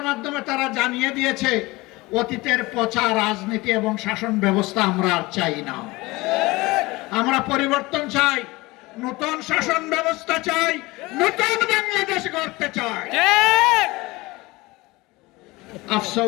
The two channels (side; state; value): right; quieter; 21.7 dB